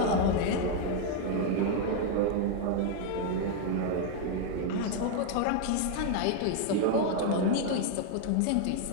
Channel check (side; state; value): both; different; correlation 0.00